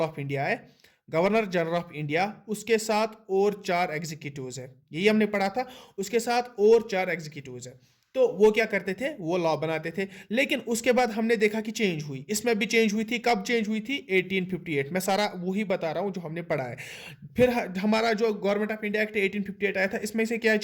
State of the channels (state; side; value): identical; both; correlation 1.00